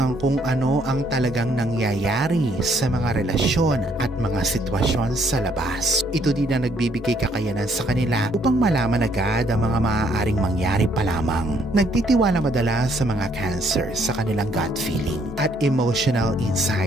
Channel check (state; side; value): normal; both; correlation 0.68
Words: kung ano ang talagang nangyayari sa mga relasyon at mga sitwasyon sa labas. Ito din ang nagbibigay kakayanan sa kanila upang malaman agad ang mga maaaring mangyari pa lamang. Nagtitiwala madalas sa mga Cancer sa kanilang gut feeling at emotional